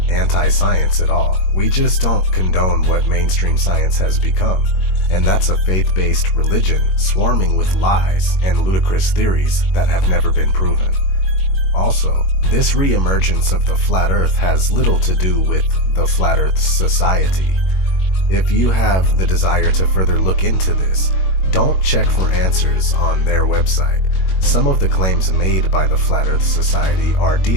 anti-science at all. We just don't condone what mainstream science has become, and that's a faith-based religion swarming with lies and ludicrous theories that have never been proven. Also, this re-emergence of the flat earth has little to do with the Flat Earth Society. If you have the desire to further look into this, don't check for answers on their website. Some of the claims made by the Flat Earth Society are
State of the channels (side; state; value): right; late; 21 ms